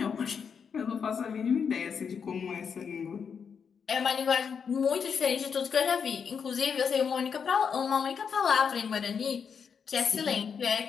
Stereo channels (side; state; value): right; quieter; 6.6 dB